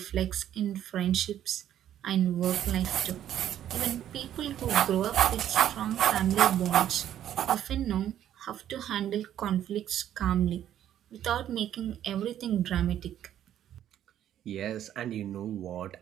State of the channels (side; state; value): left; quieter; 11.0 dB